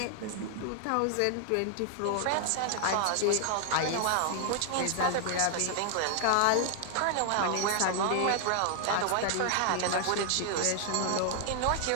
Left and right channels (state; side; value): different; both; correlation 0.00